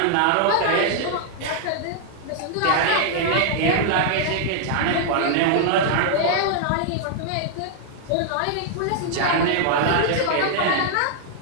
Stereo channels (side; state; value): both; different; correlation -0.01